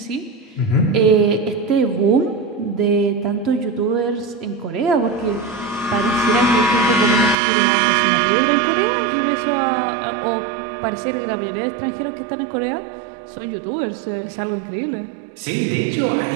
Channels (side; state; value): left; drops out; at 7.4 s